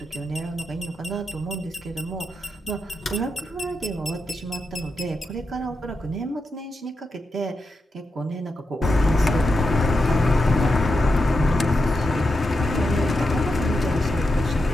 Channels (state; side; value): normal; both; correlation 0.87